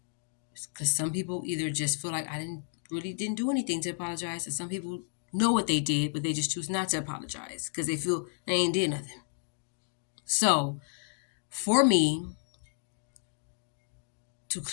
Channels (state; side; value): silent; right; digital silence